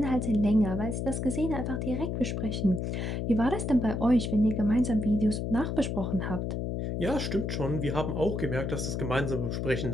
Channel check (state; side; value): noise; left; hum, 2 dB below the sound